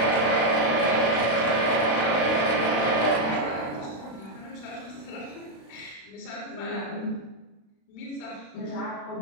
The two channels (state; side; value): late; right; 36 ms